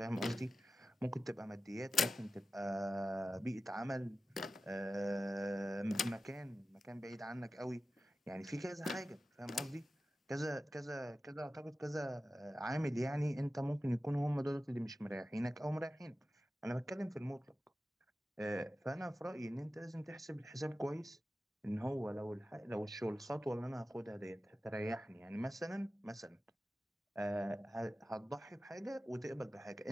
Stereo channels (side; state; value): both; normal; correlation 0.94